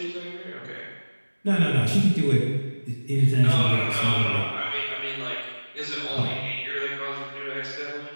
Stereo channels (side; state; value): both; inverted; correlation -1.00